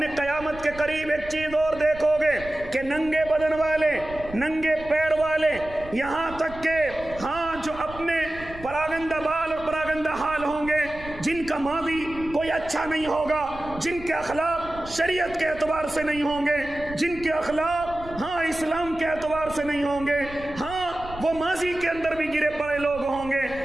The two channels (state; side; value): noise; right; rumble, 16 dB below the sound